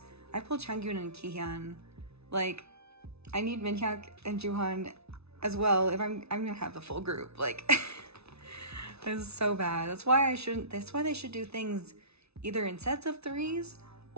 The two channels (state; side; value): late; left; 0.80 ms